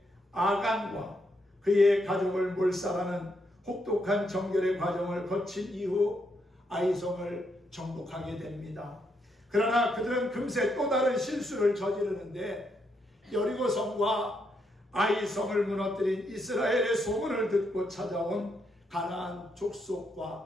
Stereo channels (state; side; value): normal; both; correlation 0.78